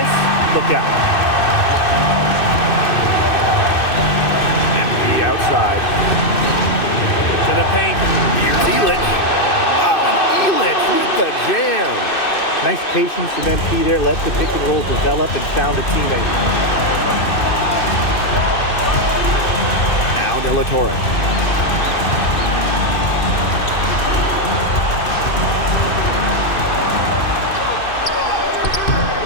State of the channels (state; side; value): late; right; 2.6 ms